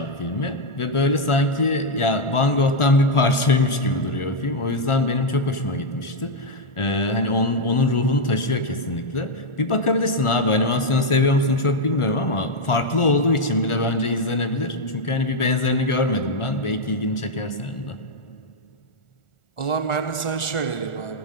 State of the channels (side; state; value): right; late; 1.4 ms